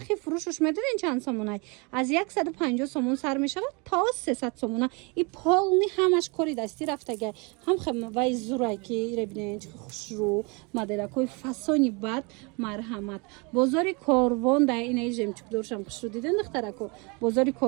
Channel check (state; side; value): quieter; left; 30.4 dB